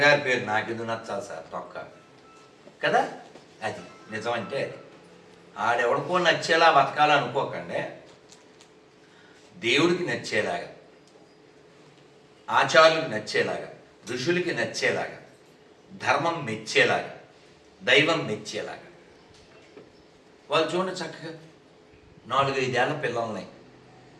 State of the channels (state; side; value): identical; both; correlation 1.00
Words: పేరు నాకెందుకు నచ్చాలి సార్? తొక్క కదా. అది నిజం అంటే అది. ఆడెవడికో నచ్చేలా బతకాలనుకోకండి. దేవుడికి నచ్చేలాగా, ఆచార్యులకు నచ్చేలాగా, ఋషులకి నచ్చేలాగా, ధర్మం మెచ్చేలాగా, దైవం మెచ్చేలాగా. వాళ్ళు చూడండి చక్కగా 4-5 ఏళ్ల పిల్లల్ని